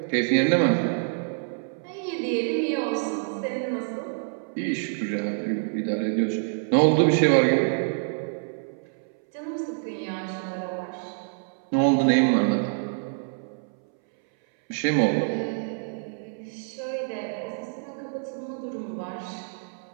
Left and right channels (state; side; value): silent; left; 61 dB below the other